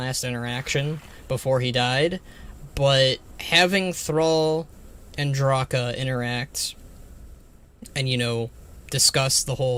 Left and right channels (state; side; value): identical; both; correlation 1.00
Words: interaction before he died, but having Thrall and Draka interact and, you know, discuss the